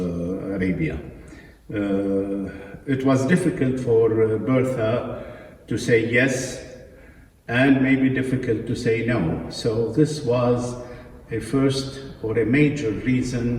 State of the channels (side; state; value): both; identical; correlation 1.00